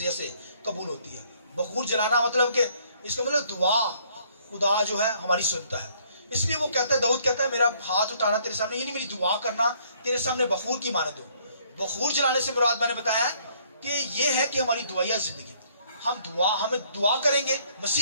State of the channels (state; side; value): inverted; both; correlation -0.64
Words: سے قبول ہوتی ہے. بخور جلانا مطلب کہ اس کا مطلب دعا خدا جو ہے ہماری سنتا ہے. اس لیے وہ کہتا ہے, داؤد کہتا ہے میرا ہاتھ اٹھانا تیرے سامنے, یعنی میری دعا کرنا تیرے سامنے بخور کی مانند ہو. بخور جلانے سے مراد میں نے بتایا کہ یہ ہے کہ ہماری دعائیہ زندگی, ہمیں دعا کریں گے